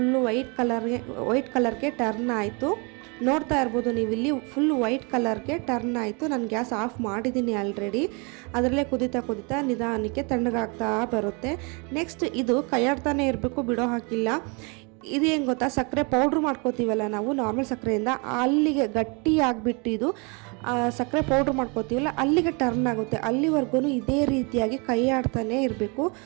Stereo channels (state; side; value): quieter; left; 31.8 dB